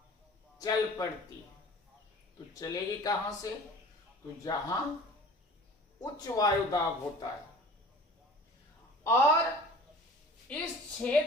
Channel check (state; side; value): normal; both; correlation 0.43